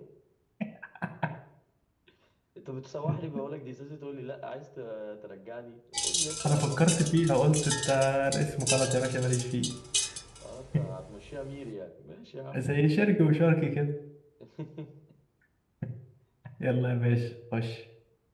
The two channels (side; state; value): both; identical; correlation 1.00